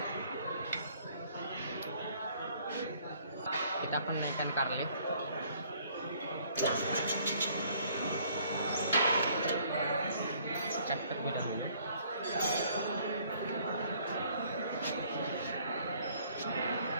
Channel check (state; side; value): inverted; both; correlation -0.61